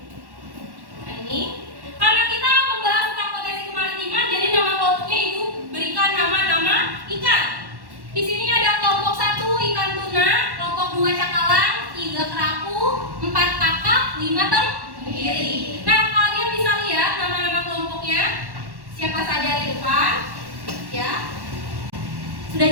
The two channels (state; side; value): late; left; 1.1 ms